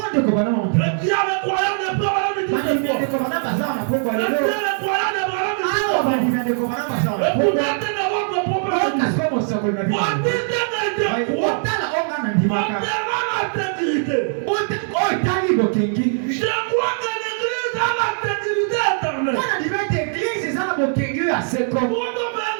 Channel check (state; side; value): silent; left; digital silence